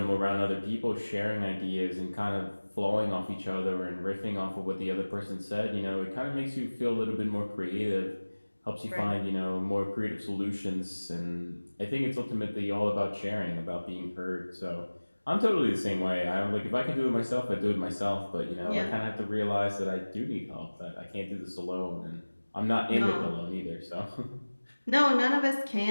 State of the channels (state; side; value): inverted; both; correlation -1.00